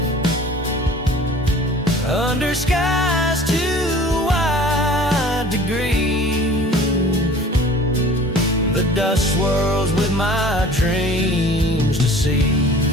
under skies too wide to grieve. The dust swirls with my dreams deceived.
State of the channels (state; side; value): normal; both; correlation 0.46